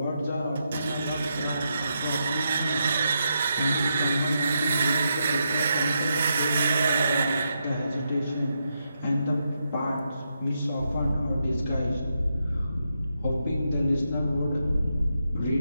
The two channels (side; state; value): both; inverted; correlation -0.83